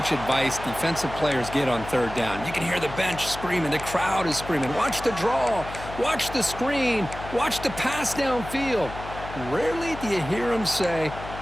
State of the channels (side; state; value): left; noise; hum, 12 dB below the sound